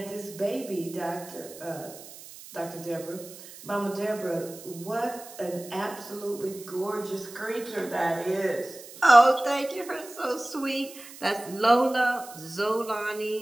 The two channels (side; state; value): right; noise; hiss, 16 dB below the sound